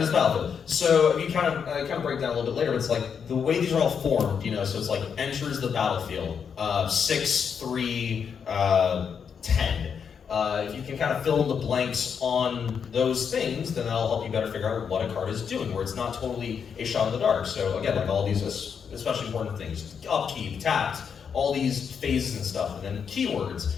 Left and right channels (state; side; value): quieter; right; 6.9 dB